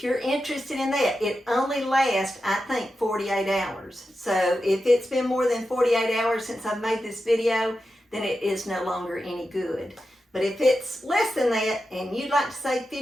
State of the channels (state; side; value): normal; both; correlation 0.90